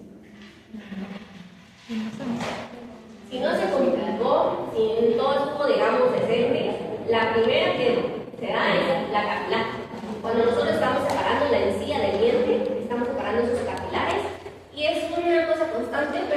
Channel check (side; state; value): both; identical; correlation 1.00